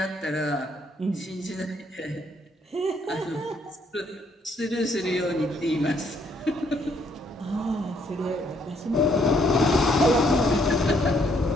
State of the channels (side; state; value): both; normal; correlation 0.69